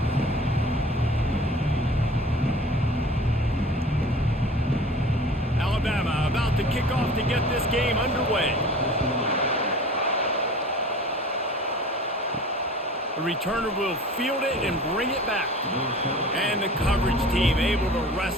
Alabama about to kick off to get this game underway. The returner will field it and bring it back. And the coverage team able to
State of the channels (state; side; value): normal; both; correlation 0.43